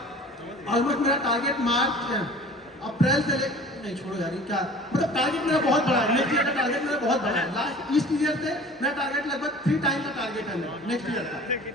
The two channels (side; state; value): both; normal; correlation 0.44